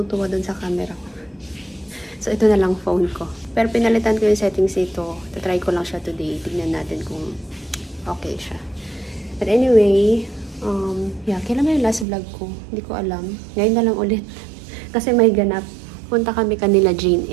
dun sa camera ko. So, ito na lang phone ko. Pero pinalitan ko yung settings nito. Tatry ko lang siya today. Tignan natin kung okay siya. But anyway, kailan na yung last vlog ko? Hindi ko alam. Ngayon na lang ulit. Kasi may ganap. Punta kami kanila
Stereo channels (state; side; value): drops out; left; at 12.1 s